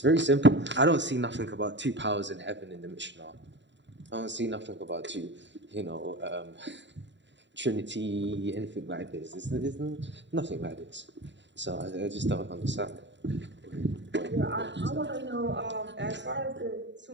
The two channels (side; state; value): left; late; 0.52 ms